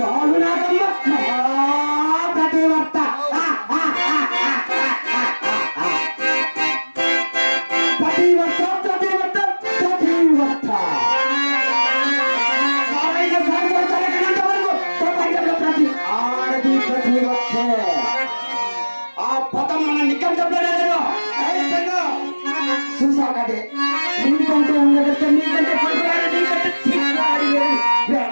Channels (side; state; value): both; inverted; correlation -1.00